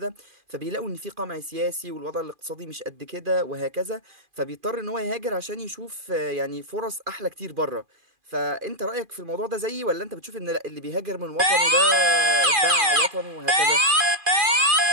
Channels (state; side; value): late; left; 2.4 ms